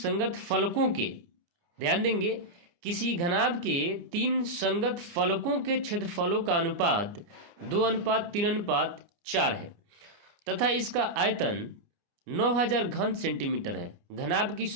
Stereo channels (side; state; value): left; late; 29 ms